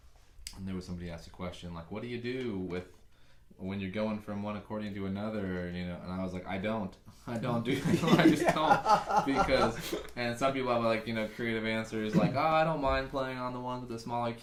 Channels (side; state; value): both; identical; correlation 1.00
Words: and there was somebody asked a question like, what do you do with when you're going from one accordion to another, you know? And I was like, I don't do I just don't, because, and some people have like, you know, creative answers like, oh, I don't mind playing on the ones with the smaller